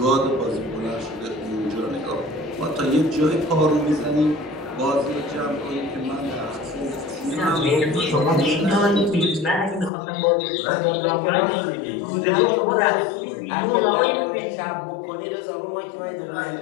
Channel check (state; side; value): drops out; right; at 9.9 s